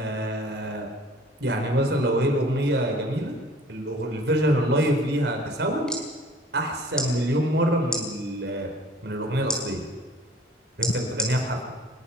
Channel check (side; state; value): both; normal; correlation 0.51